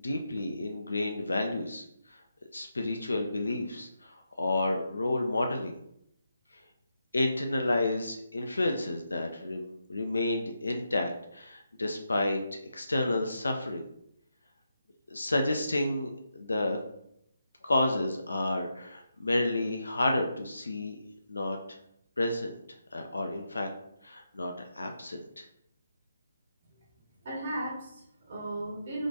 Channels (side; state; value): both; inverted; correlation -0.85